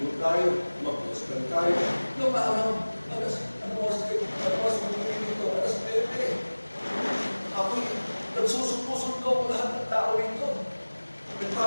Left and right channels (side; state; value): both; inverted; correlation -1.00